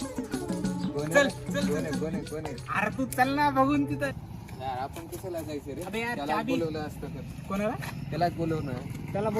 चल चल कोण आहे? अरे तू चल ना बघून तिथं. यार आपण कशाला जायचं रे? अबे यार, त्याला चाबी- बोलवलं असतं तर. कोणाला? त्यालाच बोलवणं. त्याला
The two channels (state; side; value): identical; both; correlation 1.00